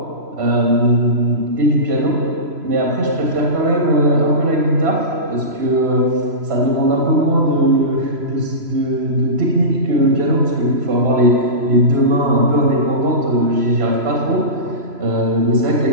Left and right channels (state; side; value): late; left; 3.0 ms